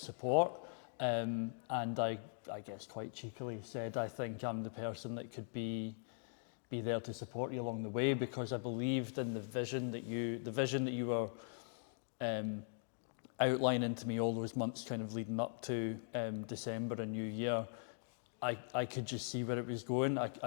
and I guess quite cheekily said, I think I'm the person that could be there to support you along the way, because I believed in the vision that you were outlining to me all those months kind of leading up to December and New Year. I could just see where it was going.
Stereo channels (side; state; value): right; silent; digital silence